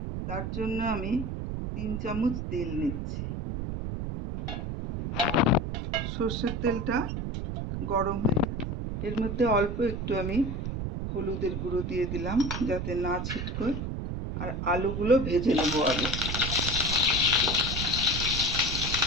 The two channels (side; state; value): right; noise; rumble, 3 dB below the sound